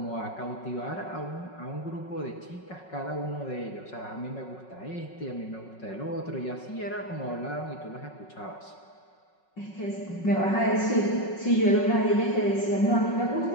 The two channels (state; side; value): late; right; 5.4 ms